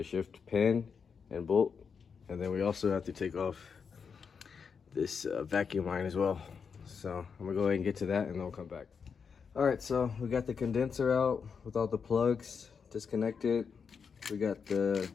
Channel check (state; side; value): quieter; right; 6.1 dB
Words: shift pin and bolt. And then we also have to take off this vacuum line as well. So I'm gonna go ahead and get to that, and then we'll come back. All right, so we got the condenser out with all the plugs disconnected. We got the